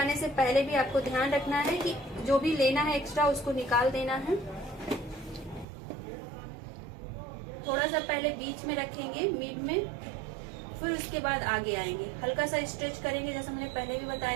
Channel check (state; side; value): drops out; left; at 5.7 s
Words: से पहले भी आपको ध्यान रखना है कि जो भी लेना है एक्स्ट्रा उसको निकाल देना है। थोड़ा सा पहले बीच में रखेंगे, मिड में, फिर उसके बाद आगे आएंगे। हल्का सा स्ट्रेच करेंगे, जैसा मैंने पहले भी